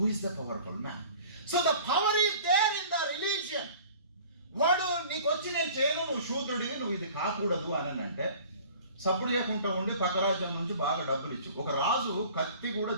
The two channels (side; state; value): both; inverted; correlation -0.47